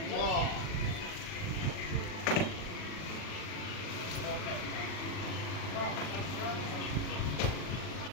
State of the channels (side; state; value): right; late; 40 ms